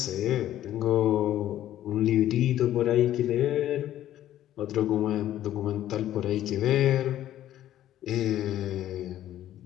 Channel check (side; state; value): right; quieter; 12.5 dB